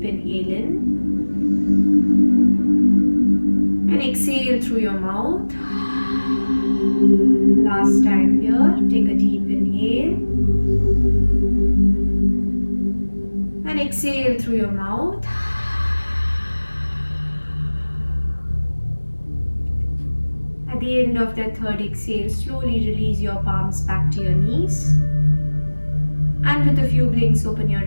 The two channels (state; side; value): inverted; both; correlation -1.00